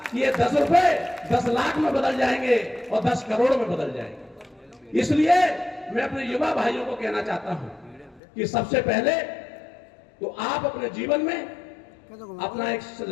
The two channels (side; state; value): right; drops out; at 8.2 s